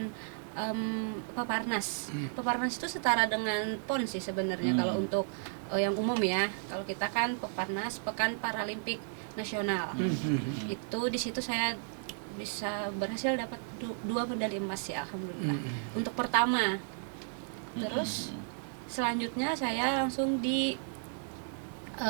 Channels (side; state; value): left; silent; 55 dB below the other